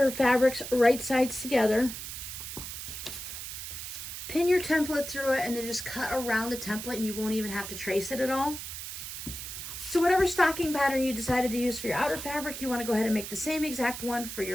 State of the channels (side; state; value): right; noise; hiss, 8 dB below the sound